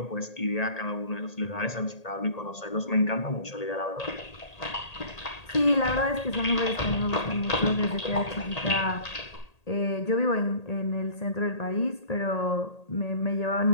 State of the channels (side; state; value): right; late; 1.8 ms